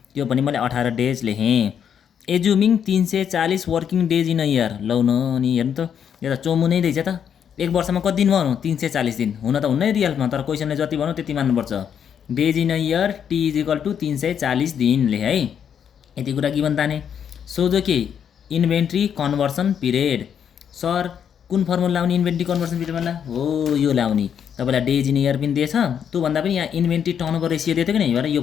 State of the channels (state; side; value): quieter; right; 8.2 dB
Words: त्यो पनि मैले 18 डेज लेखेँ। Assuming 340 working days in a year, लौ न अनि हेर्नु त यो त चोमु नै रहेछ त, 1 वर्षमा कति दिन भन्नु 340 दिन, हुन त हुन्न रियलमा, तर क्वेसनले जति भन्नु त्यति मान्नुपर्छ। Days in a year T is equal to 340 दिन लेखेँ है। यति कुरा गिभन ताने। सोझो के इन्भेन्ट्री कन्भर्सन पिरियड, सर कुन फर्मुला लाउने इन्भेन्ट्री कन्भर्सन पिरियडमा हो यो लाउने, तपाईँलाई डेज इन इयर पनि दिएछ, त्योभन्दा पनि यहाँ इन्भेन्ट्री टर्नओभर रेसियो दिएको कि नै, यो